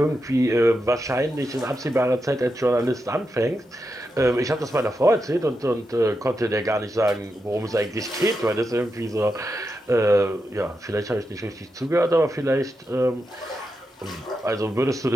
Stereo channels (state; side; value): normal; both; correlation 0.87